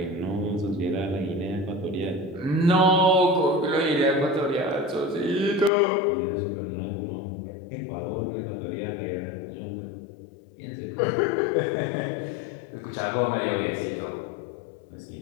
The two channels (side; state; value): right; drops out; at 5.7 s